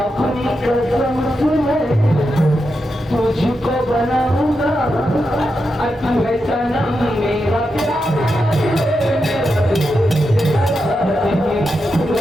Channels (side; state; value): both; normal; correlation 0.87